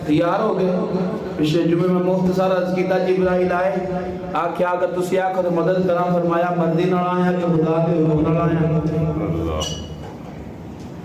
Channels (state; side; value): identical; both; correlation 1.00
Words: تیار ہو گئے. پچھلے جمعے میں مختصر عرض کیتا جبرائیل آئے آکھیا اگر تسی آکھو تو مدد کرام فرمایا مردی نہ آیا کہ خدا کے حکم نہ آیا.